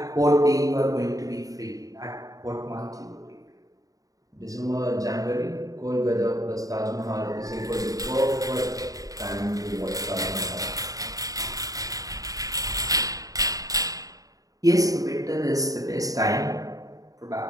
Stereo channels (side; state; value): left; late; 0.17 ms